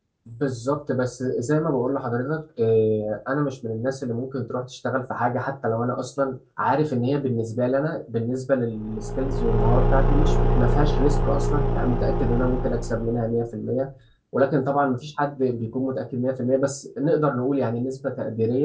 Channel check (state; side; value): identical; both; correlation 1.00